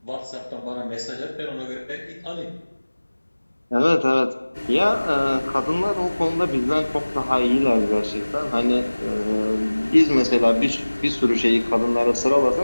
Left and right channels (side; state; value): both; inverted; correlation -1.00